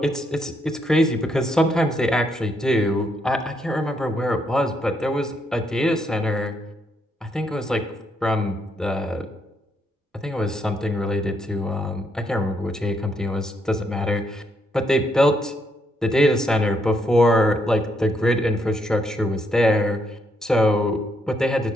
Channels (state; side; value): normal; both; correlation 0.75